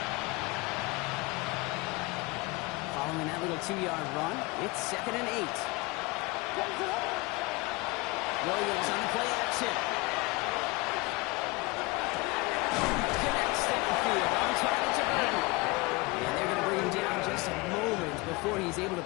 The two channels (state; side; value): quieter; right; 24.3 dB